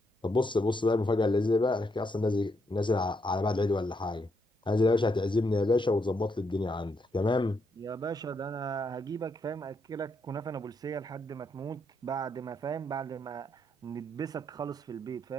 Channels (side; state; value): both; normal; correlation 0.78